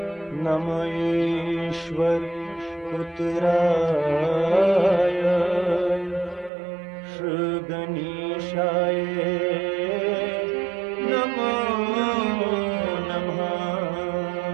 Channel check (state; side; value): drops out; left; at 6.5 s